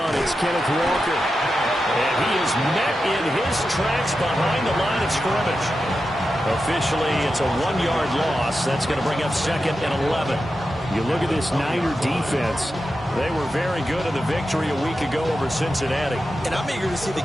It's Kenneth Walker. And he is met in his tracks behind the line of scrimmage. Officially, it's a 1-yard loss. That's going to bring up 2nd and 11. You look at this Niner defense. They were very good in the victory a week ago over Cincinnati. And I'm eager to see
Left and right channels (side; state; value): both; normal; correlation 0.90